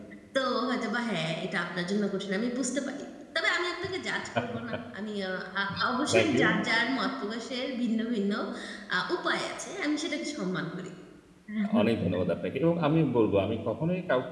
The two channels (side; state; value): both; identical; correlation 1.00